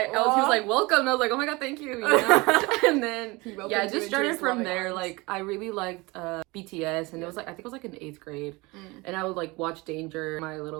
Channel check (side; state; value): left; quieter; 24.1 dB